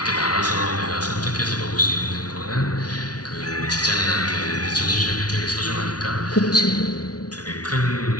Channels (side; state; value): right; late; 0.69 ms